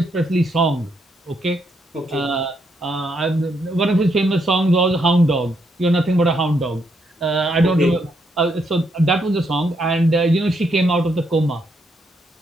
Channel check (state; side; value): normal; both; correlation 0.77